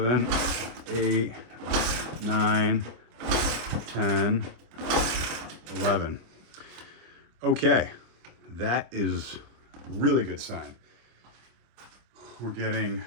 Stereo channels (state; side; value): late; left; 25 ms